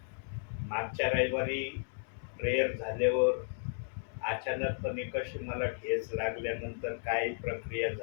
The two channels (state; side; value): silent; right; 55 dB below the other